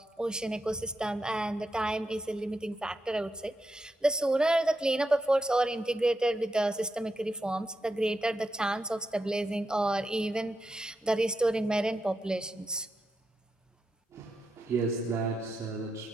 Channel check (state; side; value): normal; both; correlation 0.86